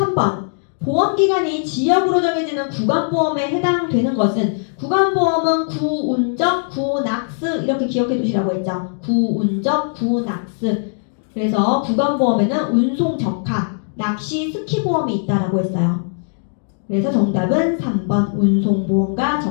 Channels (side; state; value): right; silent; digital silence